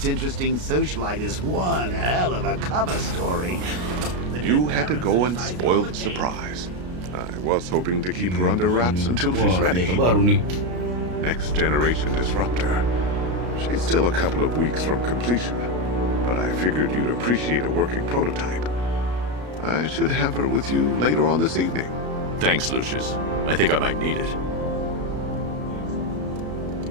interesting socialite is one hell of a cover story. You had to go and spoil the surprise. I was hoping to keep her under wraps until she's ready. Next generation disruptor. She's still a couple of weeks from completion, but I figured you'd appreciate a working prototype. I should have her with you later on this evening. Thanks, Lucius. I think I might need it.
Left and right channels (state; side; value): late; left; 33 ms